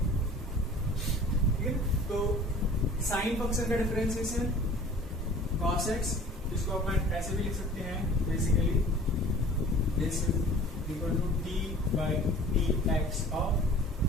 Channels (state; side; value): normal; both; correlation 0.46